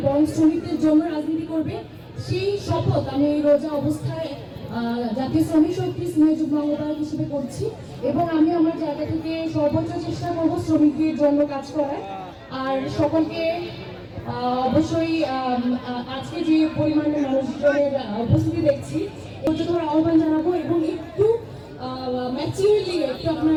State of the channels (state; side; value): identical; both; correlation 1.00